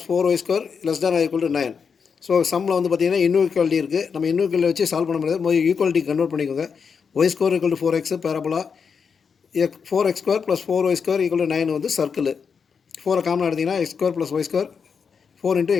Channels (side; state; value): right; quieter; 6.1 dB